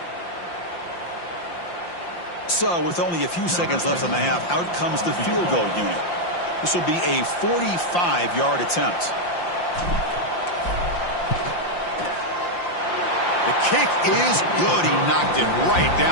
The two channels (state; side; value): late; right; 5.7 ms